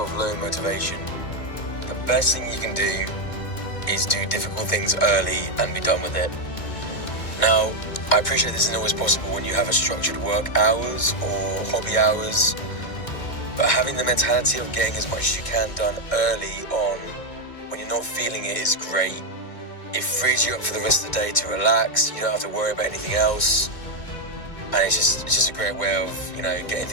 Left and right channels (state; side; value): late; right; 2.2 ms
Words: low motivation, the best thing you can do is do difficult things early and be done with it. Now, I appreciate this isn't always possible when you have a structured work hours or hobby hours, but having the mentality of getting as much as you can done early on when you're not feeling it is great. It frees you up for the rest of the day to relax. You don't have to worry about anything else, and it's just a great way of getting